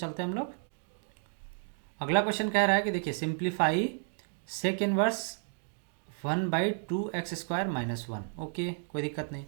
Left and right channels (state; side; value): silent; left; 56 dB below the other